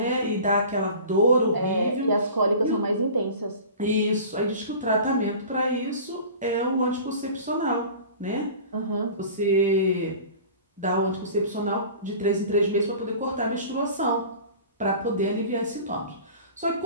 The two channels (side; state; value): both; inverted; correlation -0.40